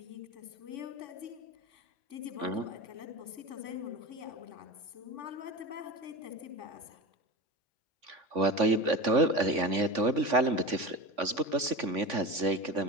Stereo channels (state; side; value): late; left; 3.5 ms